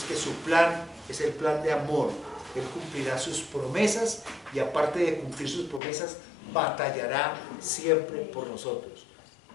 que su plan es el plan de amor. Él cumplirá sus promesas y aparte de cumplir sus promesas, batallará siempre por nosotros.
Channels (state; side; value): drops out; right; at 5.8 s